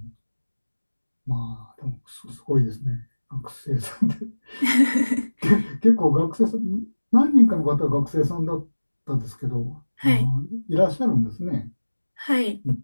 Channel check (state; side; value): inverted; both; correlation -1.00